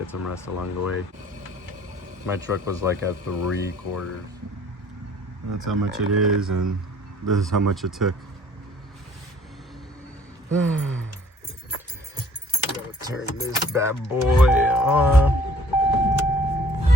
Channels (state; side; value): normal; both; correlation 0.56